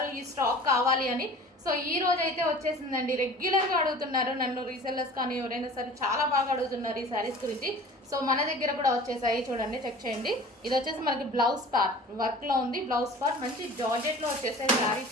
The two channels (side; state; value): both; normal; correlation 0.42